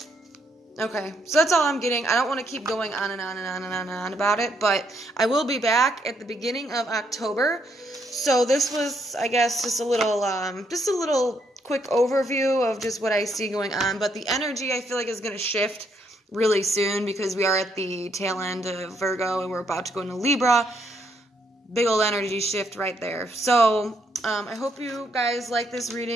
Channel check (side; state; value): both; normal; correlation 0.74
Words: Okay, so that's all I'm getting. I don't want to keep going on and on and on and on and on about it, but I will be back at the beginning of October. So this was, I guess, just a little quick overview of just what I see going on. But the energy, I feel like, is going to shift really soon, because we are at the tail end of Virgo and we're about to go into Libra. Big old energy shift right there. So I hope you guys like this